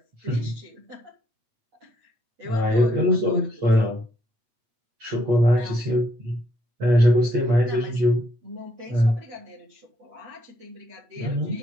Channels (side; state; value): left; late; 8.4 ms